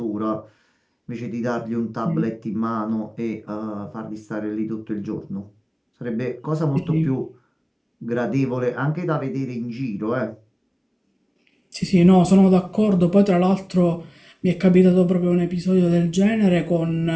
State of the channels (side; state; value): both; identical; correlation 1.00